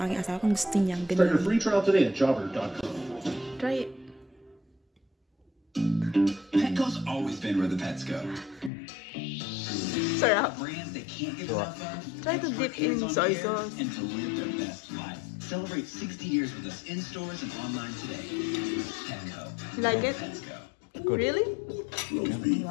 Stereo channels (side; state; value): right; drops out; at 8.7 s